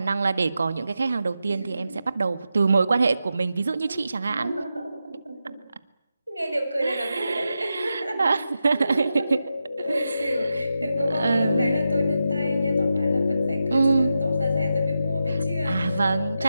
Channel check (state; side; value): inverted; both; correlation -0.88